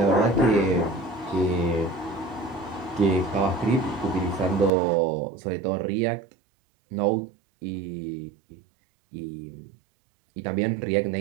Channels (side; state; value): left; drops out; at 4.7 s